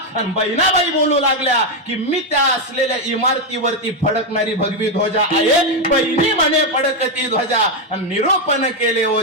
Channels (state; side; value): normal; both; correlation 0.04